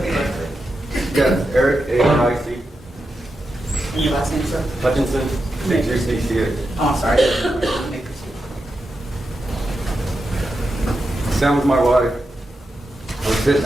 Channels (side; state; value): both; normal; correlation 0.88